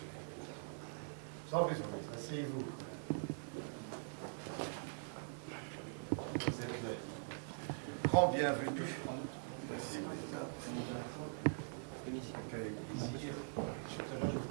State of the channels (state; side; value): silent; left; digital silence